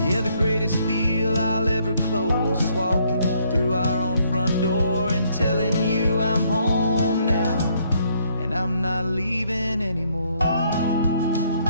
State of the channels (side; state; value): both; inverted; correlation -0.69